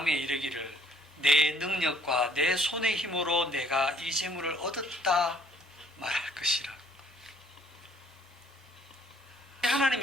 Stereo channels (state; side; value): normal; both; correlation 0.61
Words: 이르기를 내 능력과 내 손의 힘으로 내가 이 재물을 얻었다 말할 것이라.